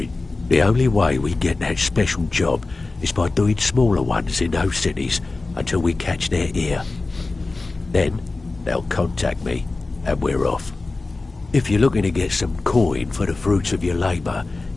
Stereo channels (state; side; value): quieter; right; 3.5 dB